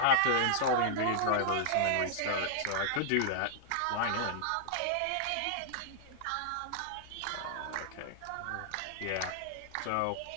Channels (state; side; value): different; both; correlation -0.01